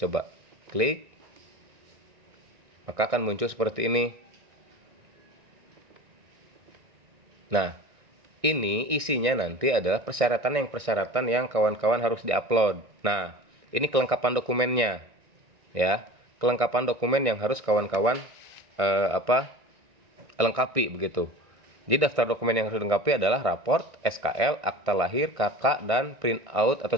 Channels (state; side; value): late; left; 1.6 ms